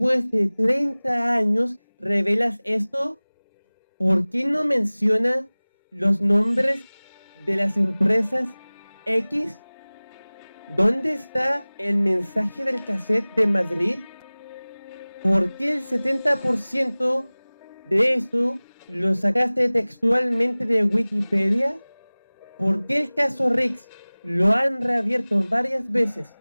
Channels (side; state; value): both; inverted; correlation -1.00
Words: de 30 años, revelas esto? ¿Por qué no menciona los nombres de las empresas X? ¿Dónde está el mensaje del cassette de Madrid? ¿Por qué el 70% de esto lo sacaste textualmente de Wikipedia? ¿Por qué el caso Rix lo han reabierto varias veces